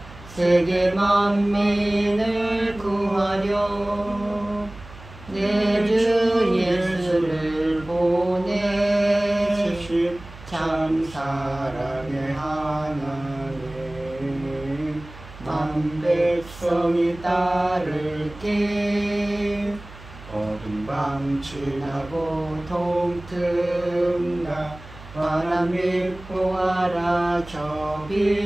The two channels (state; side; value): noise; right; hum, 18 dB below the sound